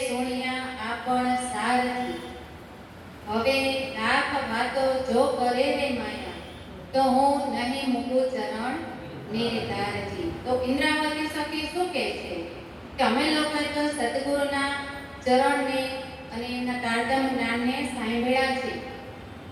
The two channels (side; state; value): both; identical; correlation 1.00